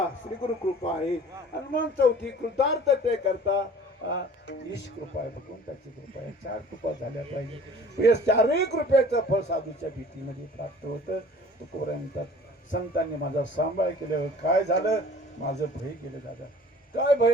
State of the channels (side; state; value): both; normal; correlation 0.47